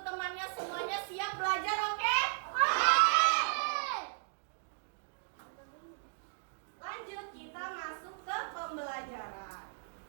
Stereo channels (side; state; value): left; silent; digital silence